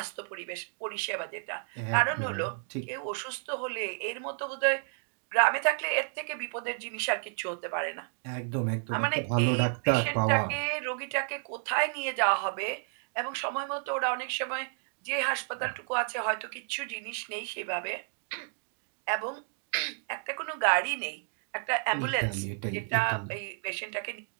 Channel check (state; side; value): silent; left; 57 dB below the other